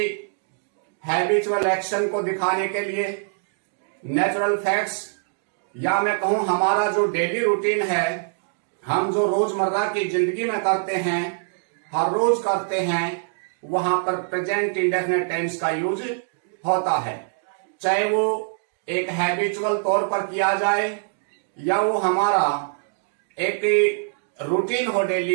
हैबिचुअल एक्शन को दिखाने के लिए, नेचुरल फैक्ट्स या मैं कहूं हमारा जो डेली रूटीन है, हम जो रोजमर्रा की जिंदगी में करते हैं, हर रोज करते हैं, वहां पर प्रेजेंट इंडेफिनिट टेंस का यूज होता है। चाहे वो एक हैबिचुअल तौर पर किया जाए या वो हमारा एक रूटीन हो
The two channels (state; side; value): silent; left; digital silence